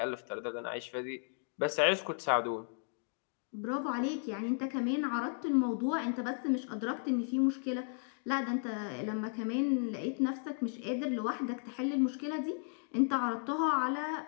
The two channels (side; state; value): right; silent; 55 dB below the other